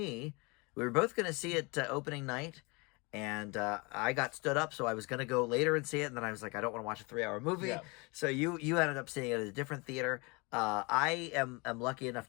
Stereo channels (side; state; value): right; quieter; 28.2 dB